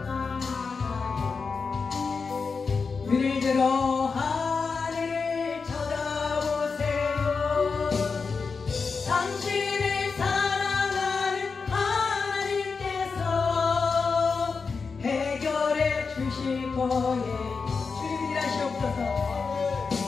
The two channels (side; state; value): right; quieter; 4.9 dB